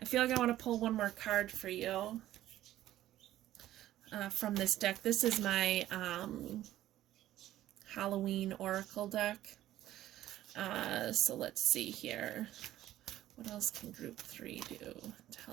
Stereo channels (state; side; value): quieter; left; 13.7 dB